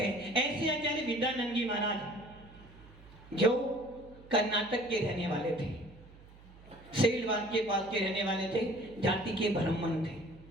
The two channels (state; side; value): noise; right; hum, 21 dB below the sound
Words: हैं। ऐसे आचार्य विद्यानंद जी महाराज जो कर्नाटक के रहने वाले थे, सेलवाल के पास के रहने वाले थे, जाति के ब्राह्मण थे।